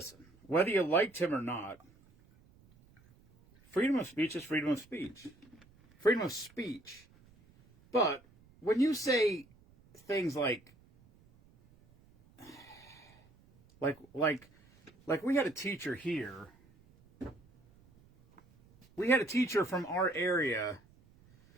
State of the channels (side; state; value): right; noise; rumble, 28 dB below the sound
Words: whether you liked him or not, freedom of speech is freedom of speech. Freedom of speech. But when you say things like we had a teacher here. We had a teacher from our area.